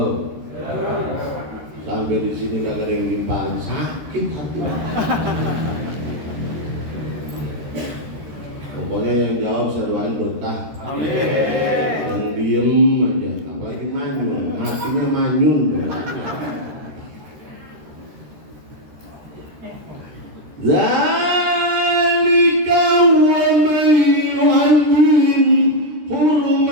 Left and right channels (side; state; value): left; late; 13 ms